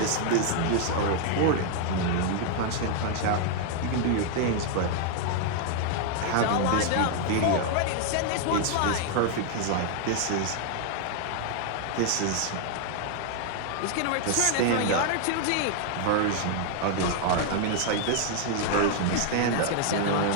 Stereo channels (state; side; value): different; both; correlation 0.00